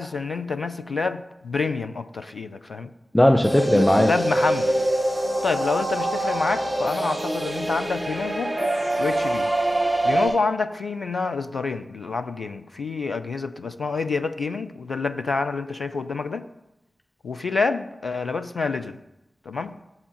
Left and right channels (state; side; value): normal; both; correlation 0.92